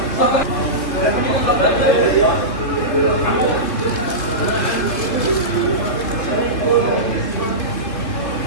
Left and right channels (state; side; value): late; right; 2.9 ms